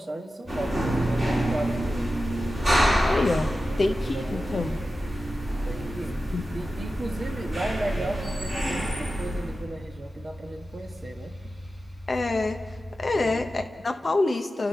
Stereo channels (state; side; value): normal; both; correlation 0.93